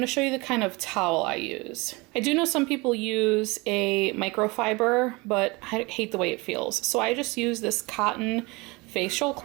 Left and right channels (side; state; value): left; quieter; 24.9 dB